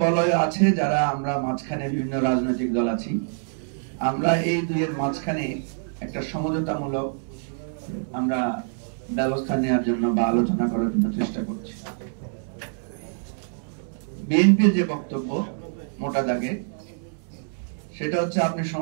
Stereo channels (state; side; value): silent; left; digital silence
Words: বলয় আছে যারা আমরা মাঝখানে বিভিন্ন রাজনৈতিক দল আছি। আমরা এই দুইয়ের মাঝখানে একটা সমঝোতামূলক আমরা ব্যবস্থা নেওয়ার জন্য বা আলোচনা করার জন্য চেষ্টা করছি। বিএনপির যে বক্তব্য মোটা দাগে, সেটা হচ্ছে আপনি